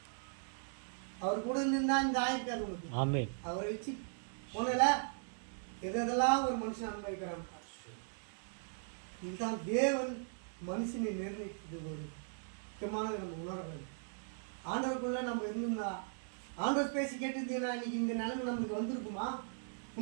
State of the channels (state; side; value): silent; left; digital silence